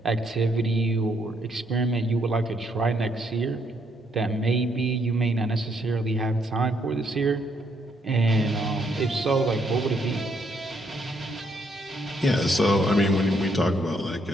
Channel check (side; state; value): both; normal; correlation 0.73